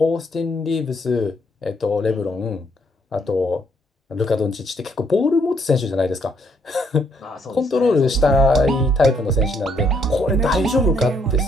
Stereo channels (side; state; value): both; normal; correlation 0.71